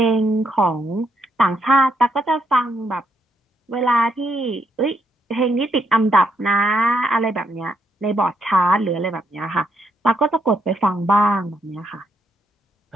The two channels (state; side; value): normal; both; correlation 0.76